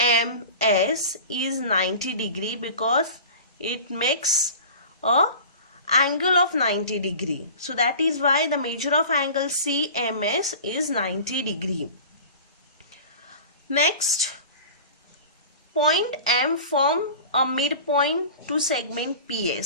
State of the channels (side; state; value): both; inverted; correlation -0.38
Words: is 90 degree because it makes a angle of 90 degree. So that is why the measure of angle CMS is 90 degree. Next, point M form a midpoint to segment